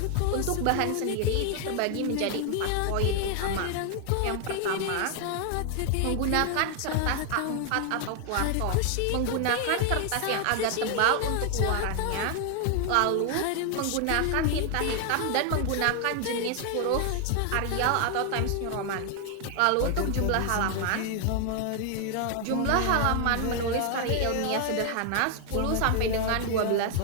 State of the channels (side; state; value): both; different; correlation 0.00